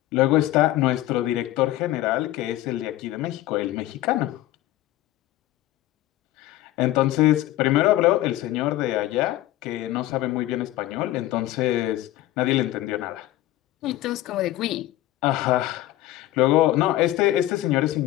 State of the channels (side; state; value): right; quieter; 15.3 dB